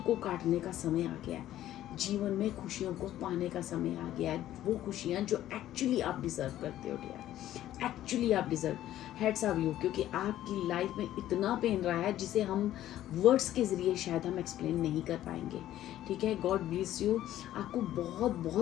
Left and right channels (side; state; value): right; quieter; 13.1 dB